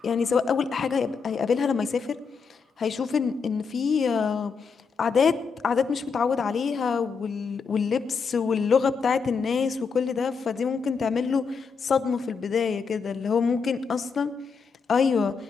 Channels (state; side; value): quieter; right; 5.5 dB